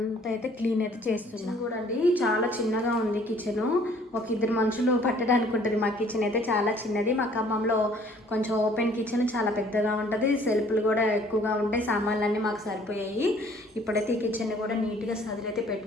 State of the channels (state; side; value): normal; both; correlation 0.57